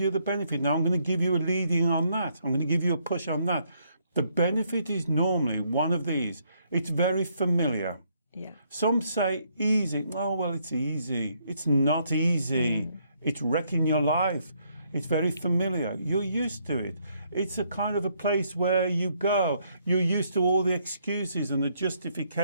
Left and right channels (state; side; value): inverted; both; correlation -0.71